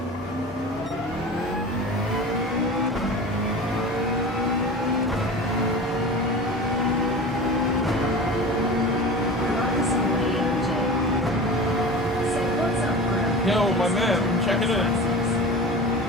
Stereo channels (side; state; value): both; normal; correlation 0.33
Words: Yo, my man, I'm checking in.